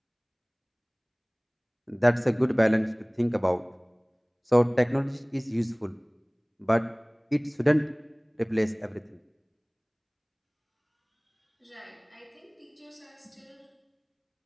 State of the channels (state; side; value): identical; both; correlation 1.00